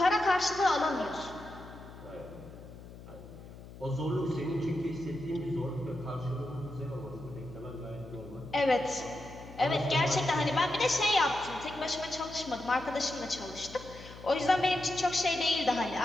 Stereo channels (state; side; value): noise; left; hum, 16 dB below the sound